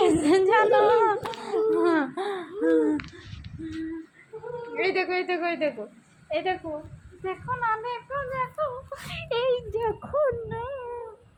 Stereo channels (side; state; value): both; identical; correlation 1.00